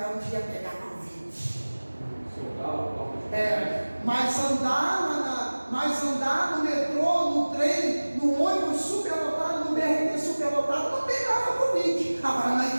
onde ia pegar Covid. Mas andar no metrô, no trem, no ônibus superlotado, no BRT superlotado, não pegava Covid. Agora na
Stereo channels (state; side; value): inverted; both; correlation -1.00